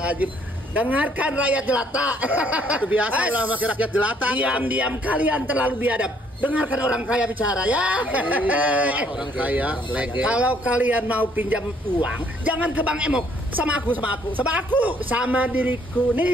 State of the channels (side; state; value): both; normal; correlation 0.65